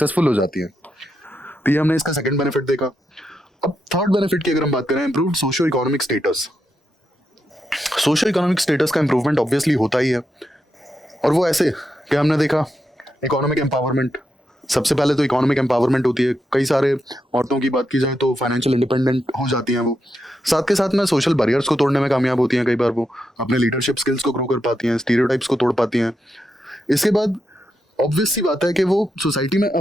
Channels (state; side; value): normal; both; correlation 0.84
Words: हो जाती है। तो ये हमने इसका सेकंड बेनिफिट देखा। अब थर्ड बेनिफिट की अगर हम बात करें, improved socio economic status. Socio economic status का इंप्रूवमेंट ऑब्वियसली होता ही है, और वो ऐसे कि हमने देखा इकोनॉमिक एम्पावरमेंट। सबसे पहले तो इकोनॉमिक एम्पावरमेंट होती है, कई सारे औरतों की बात की जाए तो फाइनेंशियल इंडिपेंडेंट हो जाती हैं वो, साथ के साथ में सोशल बैरियर्स को तोड़ने में कामयाब होती हैं, कई बार वो अपने लीडरशिप स्किल्स को ग्रो कर पाती हैं, स्टीरियोटाइप्स को तोड़ पाती हैं। इसके बाद ऑब्वियस सी बात है कि वो सोसाइटी में